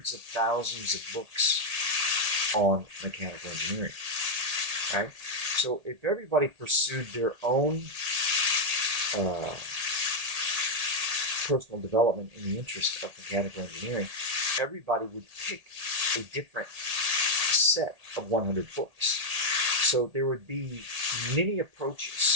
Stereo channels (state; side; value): late; left; 1.8 ms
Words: of thousands of books on mechanical engineering, right? So if everybody pursued their own personal development in the interest of mechanical engineering, everybody would pick a different set of 100 books. So there would be many